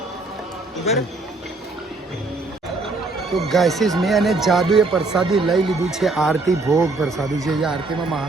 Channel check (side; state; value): left; quieter; 3.3 dB